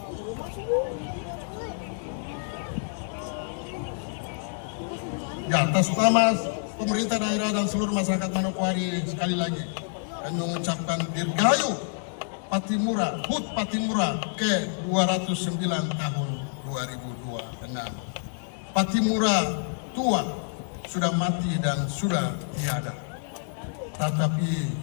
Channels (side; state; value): right; silent; 60 dB below the other